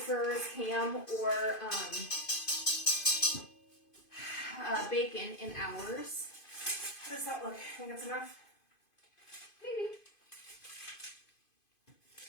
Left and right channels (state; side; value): late; right; 2.5 ms